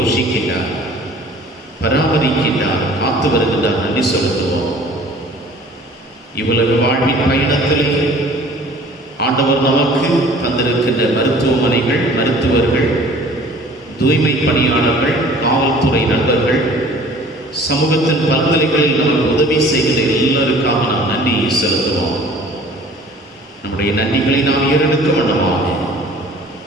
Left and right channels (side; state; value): both; normal; correlation 0.49